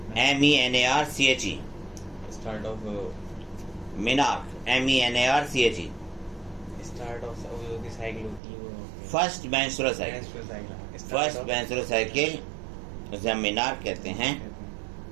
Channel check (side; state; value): left; drops out; at 8.4 s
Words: MENARCHE। Start of menarche MENARCHE। Start of जो साइकिल होती है वो first menstrual cycle. First menstrual cycle उसे हम मिनार्क कहते हैं।